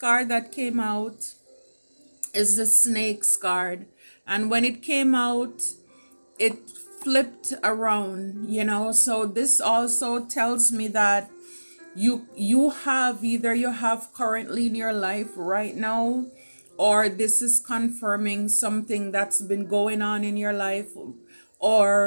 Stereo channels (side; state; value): both; inverted; correlation -1.00